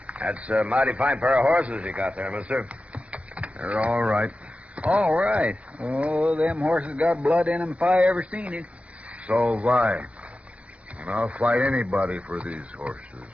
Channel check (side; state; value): left; late; 0.064 ms